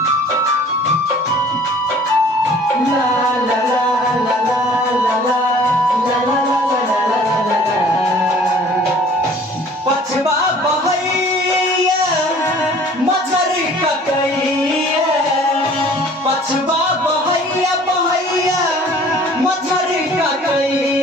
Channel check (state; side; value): normal; both; correlation 0.51